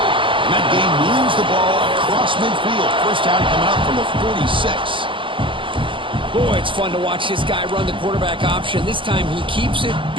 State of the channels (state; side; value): late; left; 0.25 ms